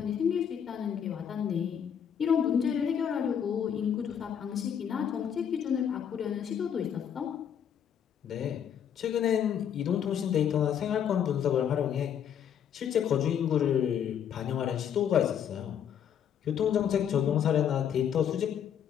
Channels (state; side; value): quieter; right; 8.7 dB